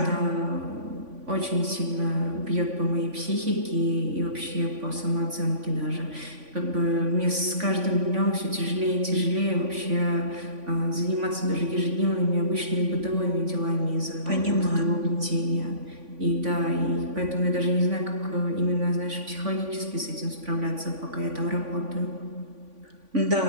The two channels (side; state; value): left; late; 3.5 ms